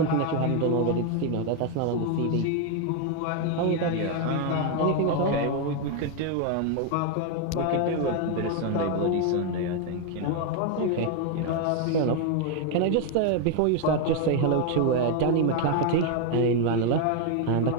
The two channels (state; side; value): different; both; correlation 0.01